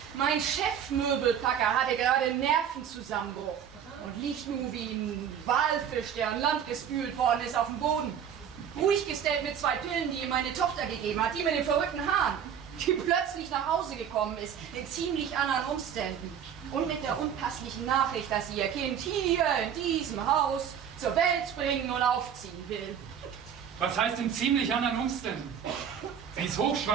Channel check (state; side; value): quieter; left; 8.5 dB